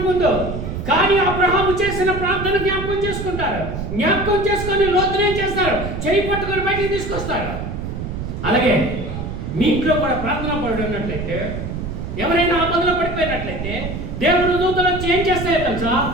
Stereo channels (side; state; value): right; noise; rumble, 6 dB below the sound